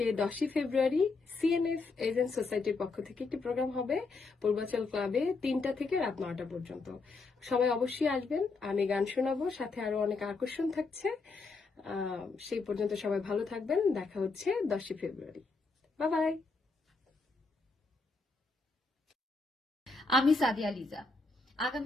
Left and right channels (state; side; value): quieter; right; 3.9 dB